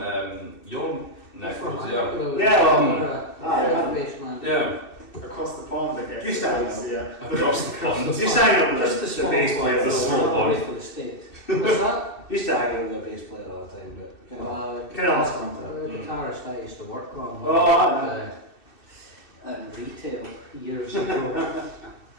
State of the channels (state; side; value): late; right; 2.6 ms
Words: your neck of the woods, Yeah, Baseman. yeah. Across the pond, I guess. Just that. Yeah. Across the pond. Used to hang out with Just the a bass small player. the small one. one. For the States. What's that? Used to hang out with the bass player all the time, but kind of lost contact. The guitarist I used to work on. In retail years ago.